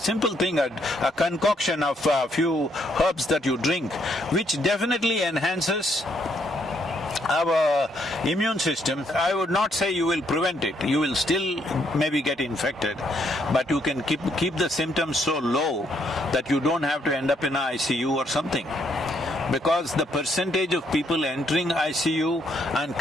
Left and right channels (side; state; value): both; normal; correlation 0.72